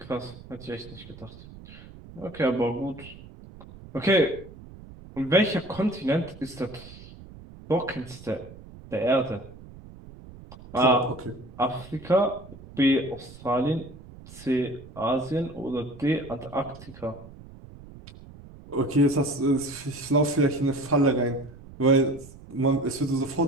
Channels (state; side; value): noise; right; rumble, 18 dB below the sound